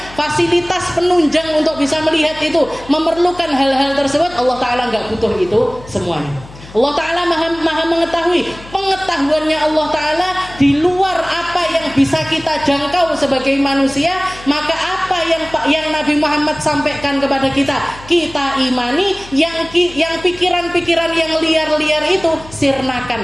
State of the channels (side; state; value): left; noise; hum, 19 dB below the sound